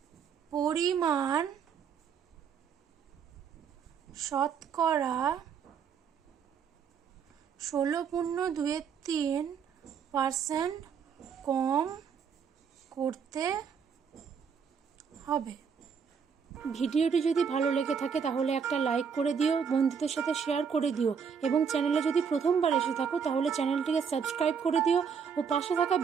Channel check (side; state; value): left; quieter; 6.7 dB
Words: পরিমাণ শতকরা 16.23% কম করতে হবে। ভিডিওটি যদি ভালো লেগে থাকে তাহলে একটা লাইক করে দিও, বন্ধুদের সাথে শেয়ার করে দিও, এবং চ্যানেলে যদি প্রথমবার এসে থাকো তাহলে চ্যানেলটিকে সাবস্ক্রাইব করে দিও ও পাশে থাকা